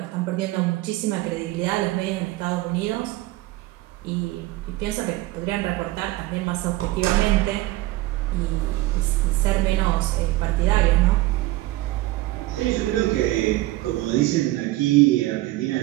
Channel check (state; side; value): quieter; left; 17.8 dB